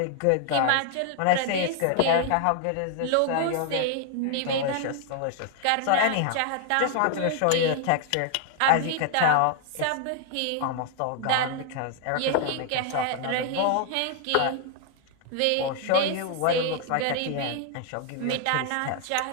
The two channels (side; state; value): both; different; correlation 0.00